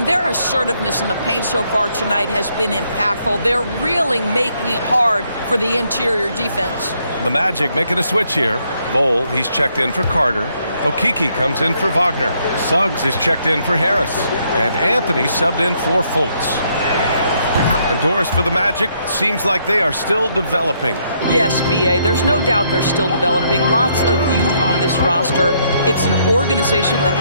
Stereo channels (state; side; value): inverted; both; correlation -0.72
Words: their assertiveness in the paint so far tonight has been impactful. They're really making it hard for the interior defense. The Magic making a switch here. Bowl, he's checked in for Carter. Okeke comes in for Wagner. Suggs is checked in for Harris. And Anthony subbed in for Fultz. And Doris, for the Magic, seems like they are still developing. Yes, B.A., there's no doubt they're still developing. Lots of youth on this roster. It's an organization that